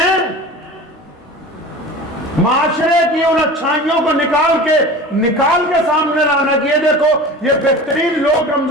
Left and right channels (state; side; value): normal; both; correlation 0.36